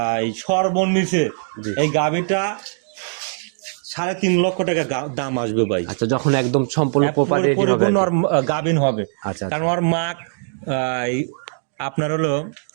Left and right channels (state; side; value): silent; left; digital silence